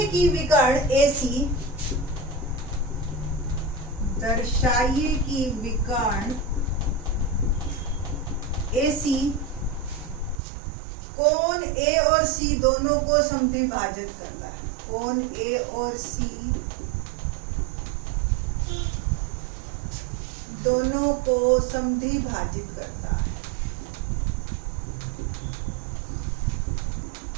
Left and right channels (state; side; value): drops out; left; at 10.4 s